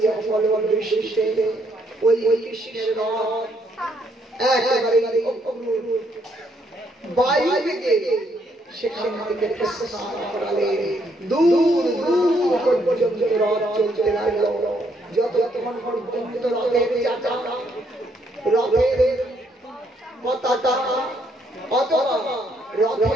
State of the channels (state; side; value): normal; both; correlation 0.71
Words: অফল বৃষ্টিতে, ওই কৃষ্ণের রথ একেবারে বায়ু থেকে সেখান থেকে প্রস্থান করালেন। দূর দূর পর্যন্ত রথ চলতে লাগলো। যতক্ষণ পর্যন্ত রথের চাকা, রথের পতাকা অথবা